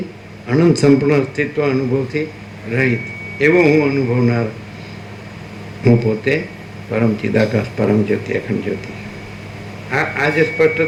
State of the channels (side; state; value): both; identical; correlation 1.00